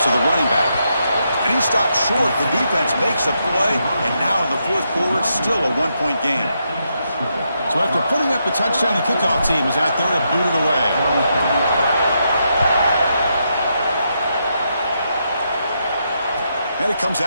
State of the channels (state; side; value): inverted; both; correlation -0.81